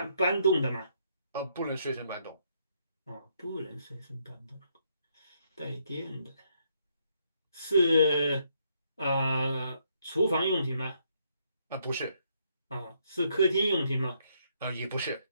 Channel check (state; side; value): inverted; both; correlation -0.73